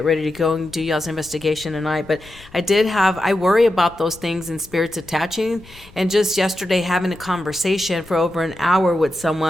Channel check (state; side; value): noise; left; rumble, 23 dB below the sound